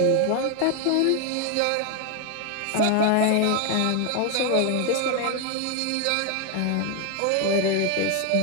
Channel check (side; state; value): both; different; correlation 0.01